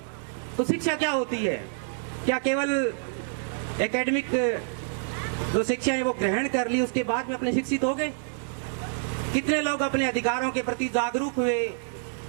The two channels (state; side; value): silent; left; 60 dB below the other